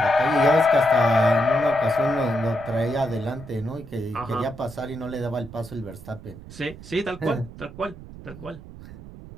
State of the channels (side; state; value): right; noise; rumble, 16 dB below the sound